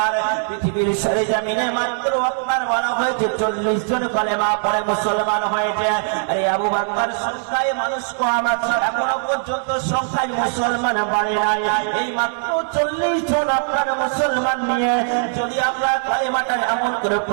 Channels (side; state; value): left; silent; digital silence